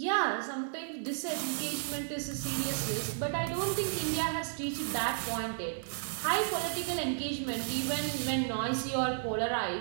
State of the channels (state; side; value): silent; left; digital silence